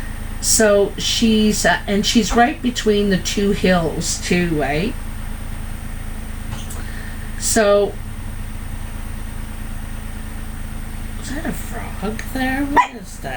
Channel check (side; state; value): both; identical; correlation 1.00